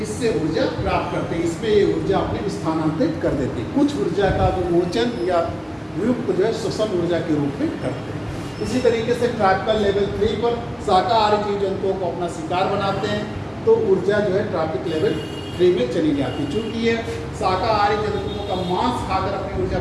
इससे ऊर्जा प्राप्त करते हैं। इसमें ये ऊर्जा अपने स्थानांतरित कर देते हैं। कुछ ऊर्जा का विमोचन या वियुक्त जो है श्वसन ऊर्जा के रूप में करते हैं। इसी तरीके से ट्रॉपिकल लेवल 3 पर शाकाहारी जीव जंतुओं को अपना शिकार बनाते हैं, तो ऊर्जा जो है ट्रॉपिक लेवल 3 में चली जाती है। चूँकि ये शाकाहारी जंतुओं का मांस खाकर अपनी ऊर्जा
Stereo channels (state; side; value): identical; both; correlation 1.00